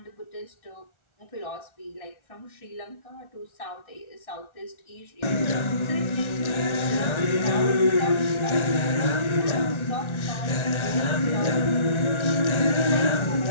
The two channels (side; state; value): right; late; 1.4 ms